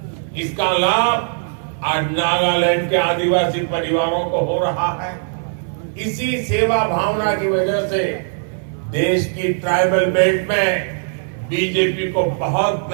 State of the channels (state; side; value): silent; left; 61 dB below the other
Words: इसका लाभ आज नागालैंड के आदिवासी परिवारों को हो रहा है। इसी सेवा भावना की वजह से देश की ट्राइबल बेल्ट में बीजेपी को बहुत